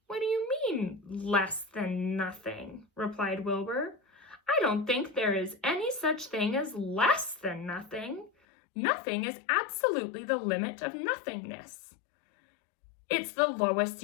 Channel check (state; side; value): drops out; right; at 8.3 s